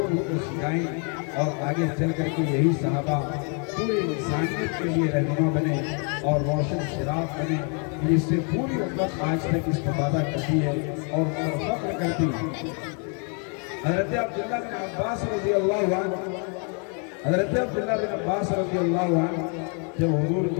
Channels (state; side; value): quieter; right; 39.3 dB